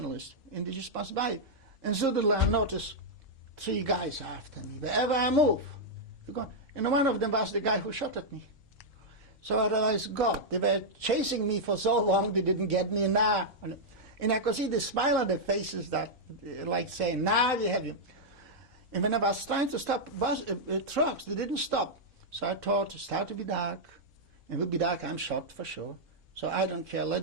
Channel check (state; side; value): normal; both; correlation -0.05